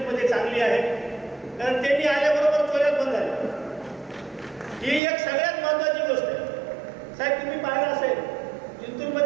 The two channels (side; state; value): left; drops out; at 5.0 s